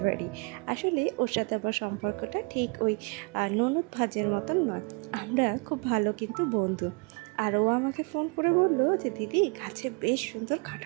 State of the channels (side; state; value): left; quieter; 31.5 dB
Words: বাড়ি। আসলে ওর সাথে আমার সম্পর্কটা ঠিক ওই ননদ ভাজের মতন নয়, আমরা খুব ভালো কিন্তু বন্ধু। আর ও আমাকে ফোন করে বললো যে দিদি গাছে বেশ সুন্দর